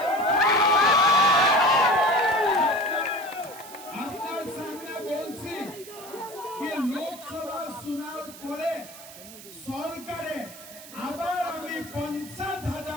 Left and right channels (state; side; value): noise; right; hiss, 16 dB below the sound